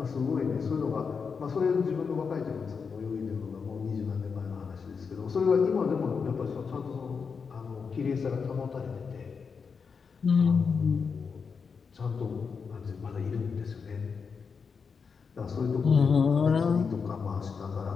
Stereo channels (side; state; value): right; quieter; 5.6 dB